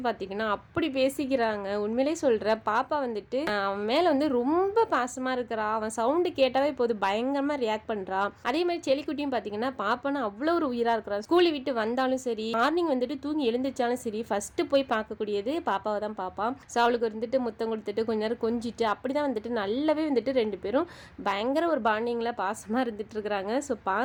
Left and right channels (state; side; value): identical; both; correlation 1.00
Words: பார்த்தீங்கன்னா அப்படி பேசிக்கிறாங்க. உண்மையிலே சொல்கிற பாப்பா வந்துட்டு அவன் மேலே வந்து ரொம்ப பாசமாக இருக்கிறா. அவன் சவுண்டு கேட்டாவே இப்போது பயங்கரமாக ரியாக்ட் பண்ணுறான். அதே மாதிரி செல்லிக்குட்டியும் பார்த்தீங்கன்னா பாப்பான்னு அவ்வளோ ஒரு உயிரா இருக்கிறான். ஸ்கூலை விட்டு வந்தாலும் சரி, மார்னிங் வந்துட்டு தூங்கி எழுந்திரிச்சாலும் சரி, ஃபர்ஸ்ட் போய் பார்க்கக்கூடியது பாப்பாவை தான் பார்ப்பான். ஸோ அவளுக்கு வந்துட்டு முத்தம் கொடுத்துட்டு கொஞ்ச நேரம் கொஞ்சிட்டு அப்படிதான் வந்துட்டு நல்லாவே வந்துட்டு ரெண்டு பேரும் பயங்கர ஒரு பாண்டிங்ல பாசமா இருந்துட்டு இருக்கிறாங்க. ஸோ